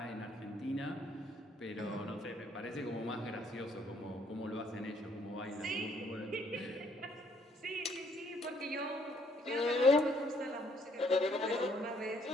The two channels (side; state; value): both; normal; correlation 0.66